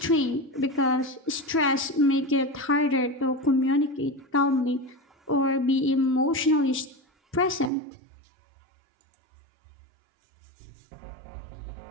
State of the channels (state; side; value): drops out; left; at 7.7 s